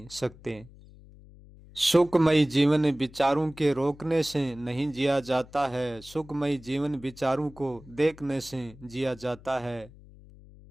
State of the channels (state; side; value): noise; left; hum, 21 dB below the sound